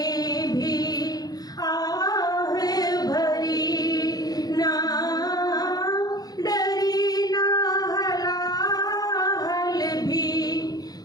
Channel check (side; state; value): right; late; 0.19 ms